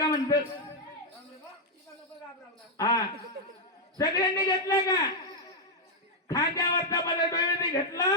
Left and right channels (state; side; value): normal; both; correlation -0.01